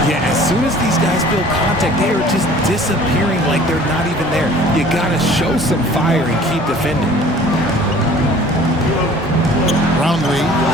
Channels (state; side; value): normal; both; correlation 0.49